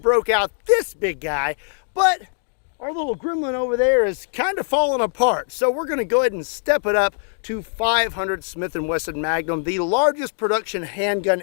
out this big guy, but our little gremlin over there is kind of falling apart. So we're going to go ahead and step it up to 500 Smith & Wesson Magnum, the largest production handgun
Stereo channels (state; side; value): silent; right; digital silence